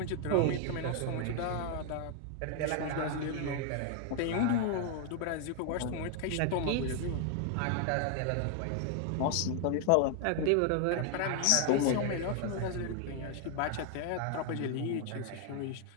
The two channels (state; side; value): different; both; correlation 0.00